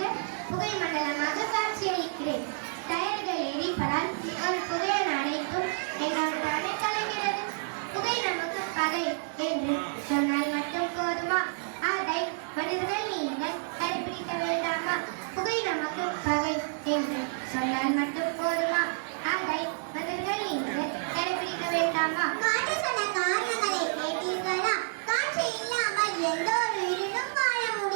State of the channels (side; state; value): left; silent; digital silence